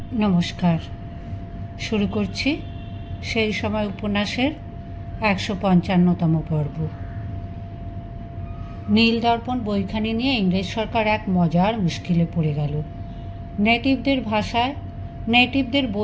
নমস্কার। শুরু করছি সেই সময় উপন্যাসের ১৫৫তম পর্ব। নীল দর্পণ বইখানি নিয়ে ইংরেজ সরকার এক মজার মুশকিলে পড়ে গেল। নেটিভদের ভাষায়, নেটিভদের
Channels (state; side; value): identical; both; correlation 1.00